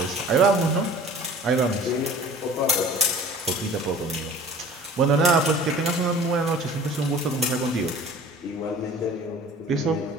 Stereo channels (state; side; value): normal; both; correlation 0.44